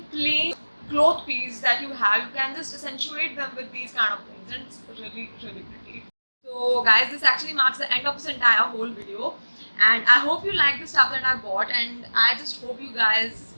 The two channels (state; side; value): inverted; both; correlation -1.00